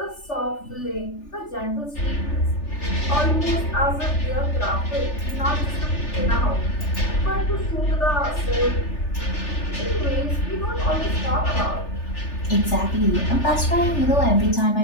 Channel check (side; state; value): right; late; 3.4 ms